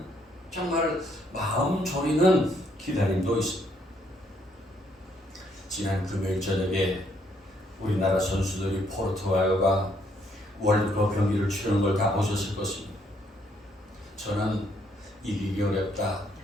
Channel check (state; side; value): normal; both; correlation 0.70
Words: 정말 마음 졸이는 기다림도 있습니다. 지난 금요일 저녁에 우리나라 선수들이 포르투갈과 월드컵 경기를 치르는 걸 다 보셨을 것입니다. 저는 이기기 어렵다